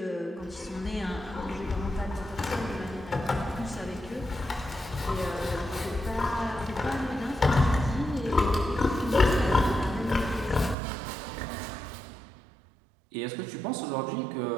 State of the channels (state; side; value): drops out; left; at 10.8 s